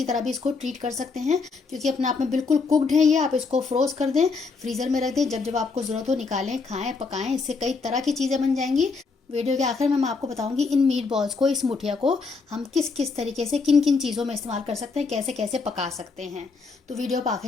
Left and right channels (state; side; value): quieter; right; 4.5 dB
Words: तरह भी इसको ट्रीट कर सकते हैं, क्योंकि अपने आप में बिल्कुल कुकड है ये। आप इसको फ्रोज कर दें, फ्रीज़र में रख दें, जब जब आपको ज़रूरत हो निकालें, खाएं, पकाएं। इससे कई तरह की चीज़ें बन जाएंगी। वीडियो के आखिर में मैं आपको बताऊंगी इन मीट बॉल्स को, इस मुठिया को हम किस किस तरीके से, किन किन चीज़ों में इस्तेमाल कर सकते हैं, कैसे कैसे पका सकते हैं। तो वीडियो पर